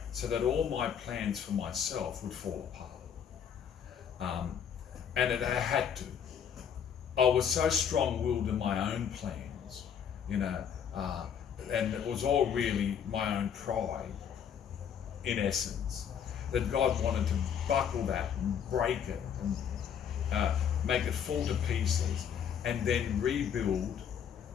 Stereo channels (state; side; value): quieter; right; 8.1 dB